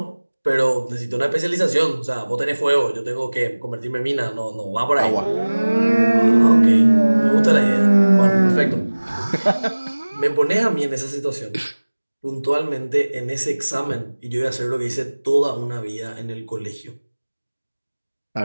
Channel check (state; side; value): inverted; both; correlation -1.00